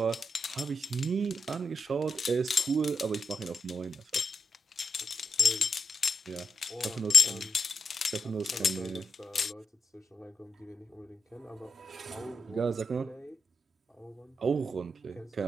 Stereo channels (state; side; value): normal; both; correlation 0.83